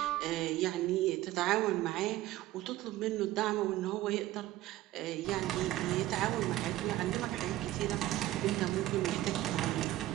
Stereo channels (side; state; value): left; quieter; 15.4 dB